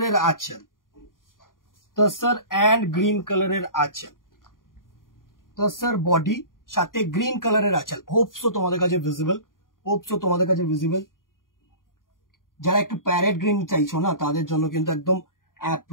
আঁচল, তসর অ্যান্ড গ্রিন কালারের আঁচল, তসর বডি সাথে গ্রিন কালারের আঁচল। হোপসো তোমাদের কাছে ভিজিবল, হোপসো তোমাদের কাছে ভিজিবল। যারা একটু প্যারেট গ্রিন চাইছো না তাদের জন্য কিন্তু একদম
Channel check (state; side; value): late; right; 0.90 ms